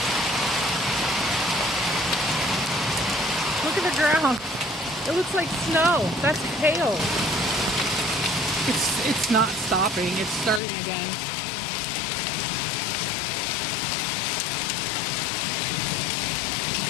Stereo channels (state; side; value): drops out; right; at 10.6 s